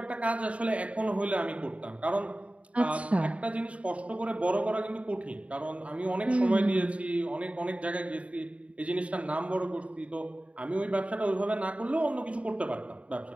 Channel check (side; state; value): left; late; 0.064 ms